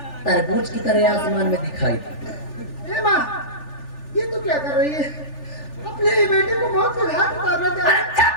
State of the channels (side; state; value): right; late; 3.4 ms